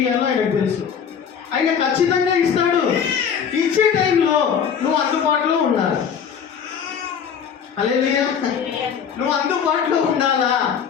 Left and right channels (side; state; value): right; quieter; 7.4 dB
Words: ఇవ్వాలో ఆయనకు తెలుసు. ఆయన ఖచ్చితంగా ఇస్తాడు. ఇచ్చే టైంలో నువ్వు అందుబాటులో ఉండాలి. హల్లెలూయా, నువ్వు అందుబాటులో ఉండాలా.